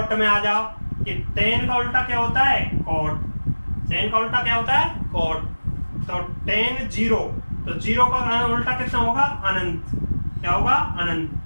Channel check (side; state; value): both; inverted; correlation -1.00